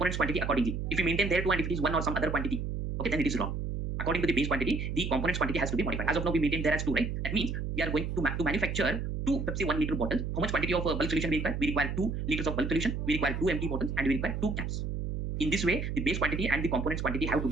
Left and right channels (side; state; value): right; noise; hum, 3 dB below the sound